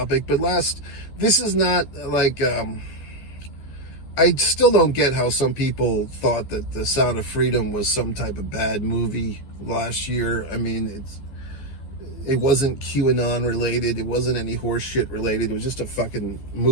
But this is not like, I still don't get how some people thought that the Sound of Freedom was some type of bad movie last year. I mean, it wasn't QAnon related. It wasn't any horse shit related. It was just a fucking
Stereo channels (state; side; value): late; right; 12 ms